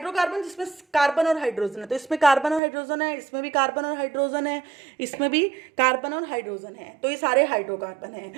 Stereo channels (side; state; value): left; drops out; at 2.6 s